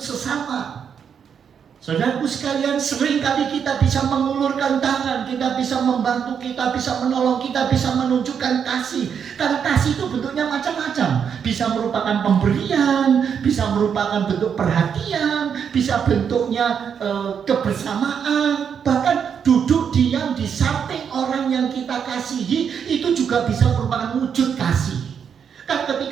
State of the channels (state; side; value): quieter; left; 7.4 dB